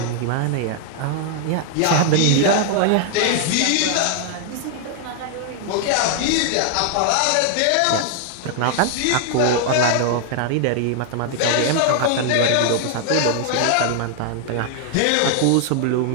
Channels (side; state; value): both; different; correlation 0.00